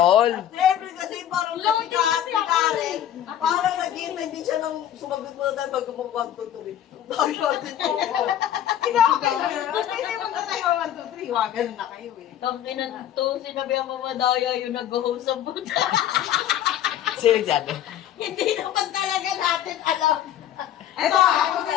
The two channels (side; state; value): right; quieter; 11.0 dB